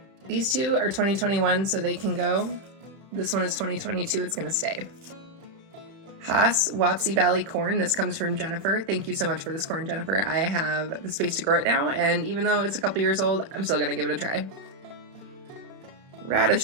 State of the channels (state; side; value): late; left; 31 ms